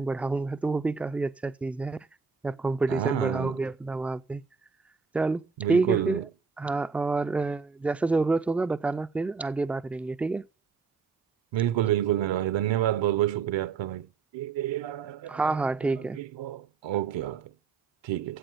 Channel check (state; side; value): quieter; left; 5.3 dB